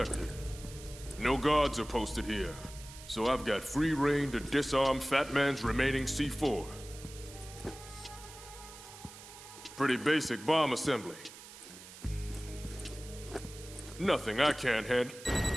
No guards are posted here, so I've got free reign to disarm Fat Man's remaining C4. Pretty basic bomb assembly. Nothing I can't handle.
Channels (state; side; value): noise; right; hiss, 16 dB below the sound